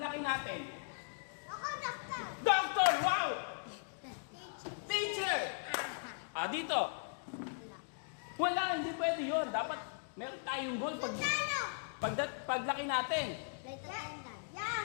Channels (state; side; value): silent; right; digital silence